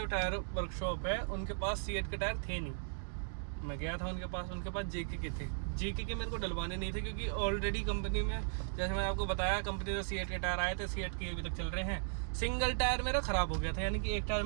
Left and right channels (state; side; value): silent; left; digital silence